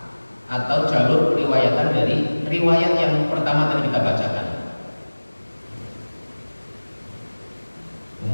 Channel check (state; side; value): inverted; both; correlation -1.00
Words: atau jalur riwayatan dari riwayat yang pertama tadi kita bacakan.